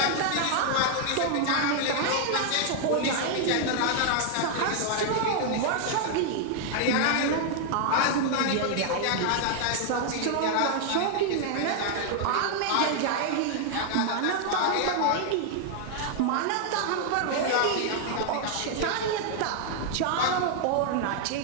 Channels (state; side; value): different; both; correlation 0.00